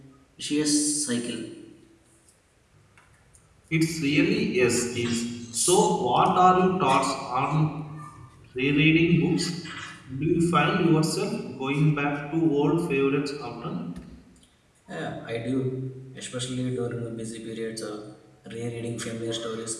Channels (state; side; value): identical; both; correlation 1.00